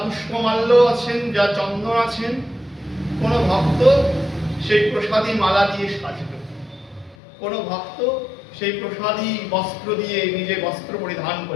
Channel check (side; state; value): right; drops out; at 7.2 s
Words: পুষ্পমাল্য আছেন, যা চন্দন আছেন, কোনো ভক্ত সেই প্রসাদী মালা দিয়ে সাজবে, কোনো ভক্ত সেই প্রসাদী বস্ত্র দিয়ে নিজে বস্ত্র পরিধান